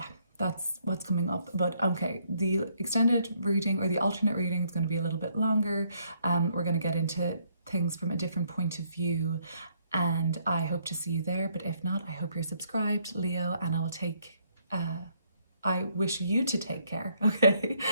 that's what's coming up. But okay, the extended reading, or the alternate reading, is going to be a little bit longer. We're going to get into things from a different point of view, and I hope to see you there. But if not, I hope you're subscribed, Leo, and I wish you to take care. Okay,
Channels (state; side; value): inverted; both; correlation -0.70